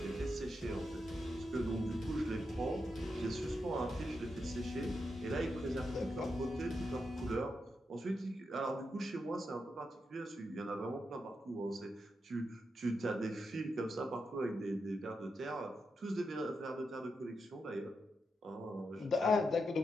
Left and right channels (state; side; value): normal; both; correlation 0.86